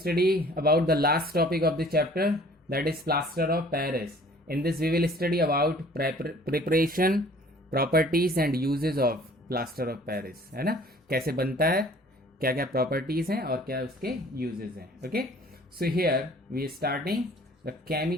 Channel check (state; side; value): normal; both; correlation 0.53